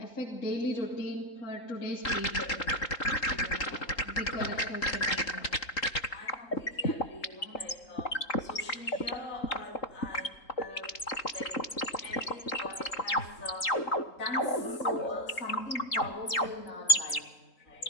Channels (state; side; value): late; right; 3.8 ms